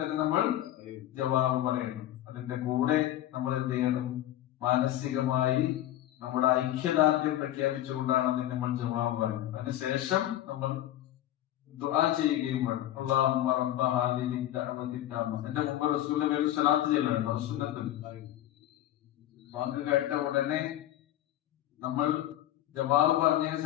നമ്മൾ ജവാബ് പറയണം. അതിന്റെ കൂടെ നമ്മൾ എന്ത് ചെയ്യണം? മാനസികമായി നമ്മുടെ ഐക്യദാർഢ്യം പ്രഖ്യാപിച്ചുകൊണ്ടാണ് അതിന് നമ്മൾ ജവാബ് പറയുന്നത്. അതിനുശേഷം നമ്മൾ ദുആ ചെയ്യുകയും വേണം. അല്ലാഹുമ്മ റബ്ബ ഹാദിഹി ദഅവതി തമ്മ. എന്റെ മുമ്പ് റസൂലിന്റെ മേൽ സ്വലാത്ത് ചെല്ലണം. സുന്നത്തുൽ വാക്ക് കേട്ട ഉടനെ നമ്മൾ ജവാബ് പറഞ്ഞതിന്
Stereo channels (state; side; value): quieter; right; 13.4 dB